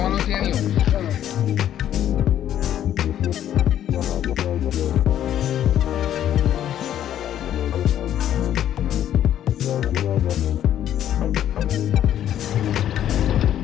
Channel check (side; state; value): right; quieter; 11.0 dB